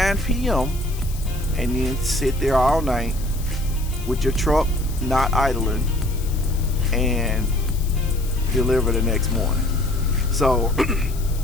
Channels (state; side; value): noise; left; hiss, 16 dB below the sound